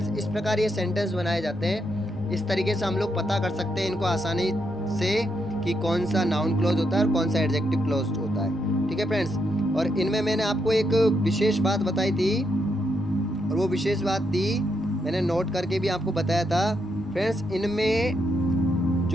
इस प्रकार ये सेंटेंस बनाए जाते हैं। इस तरीके से हम लोग पता कर सकते हैं इनको आसानी से कि कौन सा नाउन क्लॉज होता है और कौन सा एडजेक्टिव क्लॉज होता है। ठीक है फ्रेंड्स, और इनमें मैंने आपको एक विशेष बात बताई थी, और वो विशेष बात थी मैंने नोट करके भी आपको बताया था। फ्रेंड्स इनमें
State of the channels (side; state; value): both; normal; correlation 0.80